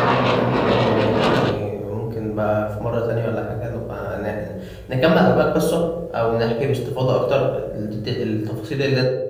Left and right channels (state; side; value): identical; both; correlation 1.00